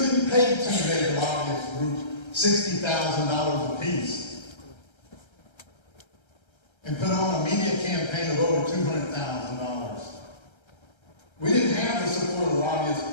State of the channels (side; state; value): right; late; 1.3 ms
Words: pay two major lobbyist groups $60,000 apiece and put on a media campaign of over $200,000. We didn't have the support of the lobbyists